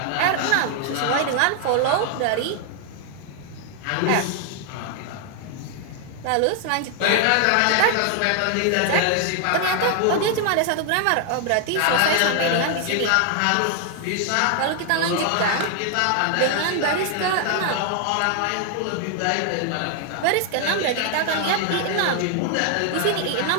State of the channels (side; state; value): both; different; correlation 0.00